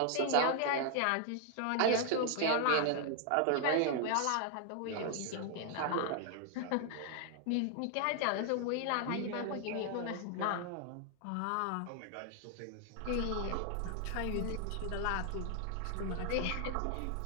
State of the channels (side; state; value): both; different; correlation 0.00